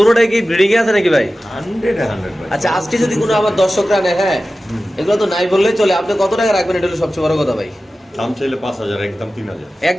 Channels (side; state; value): both; normal; correlation 0.95